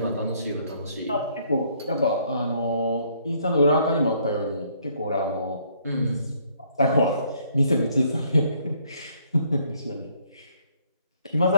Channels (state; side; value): inverted; both; correlation -0.66